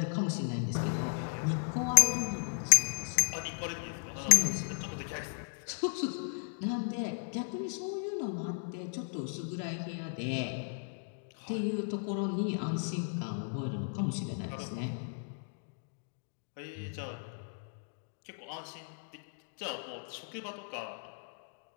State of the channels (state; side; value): silent; right; digital silence